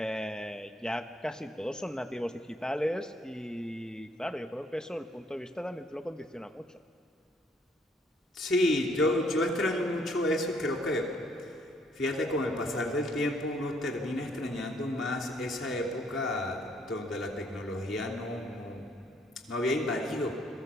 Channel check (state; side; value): normal; both; correlation 0.66